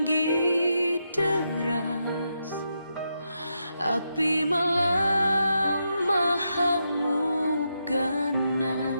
deras, api malam mengamuk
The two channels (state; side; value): inverted; both; correlation -0.84